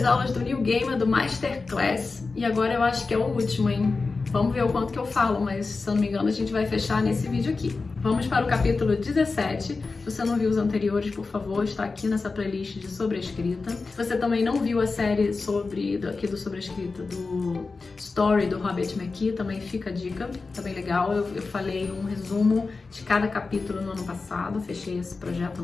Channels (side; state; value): right; quieter; 4.1 dB